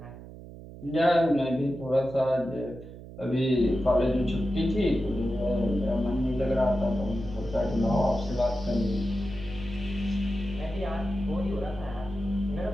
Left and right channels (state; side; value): noise; right; hum, 15 dB below the sound